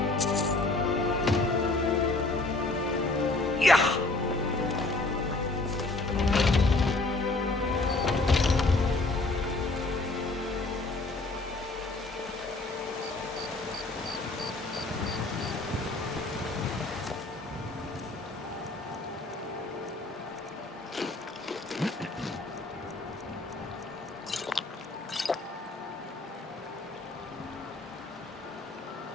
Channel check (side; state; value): right; quieter; 3.1 dB